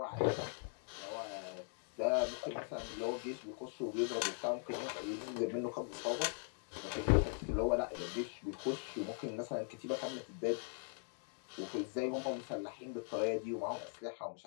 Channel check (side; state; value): right; silent; 51 dB below the other